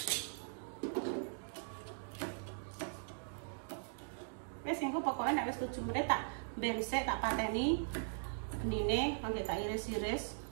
Wes engko pokoke nek wis 7 menit tak bensek tak pateni benine kangge tak iris-iris.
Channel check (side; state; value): left; silent; digital silence